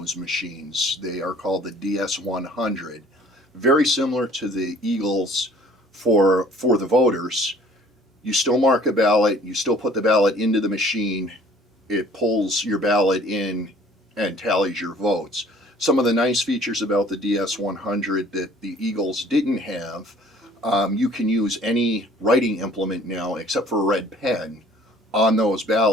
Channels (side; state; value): both; normal; correlation 0.53